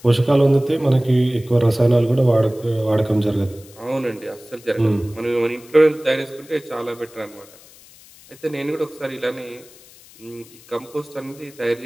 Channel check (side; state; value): left; noise; hiss, 23 dB below the sound